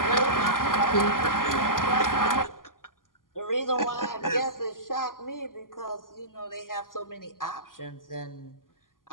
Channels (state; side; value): late; right; 0.91 ms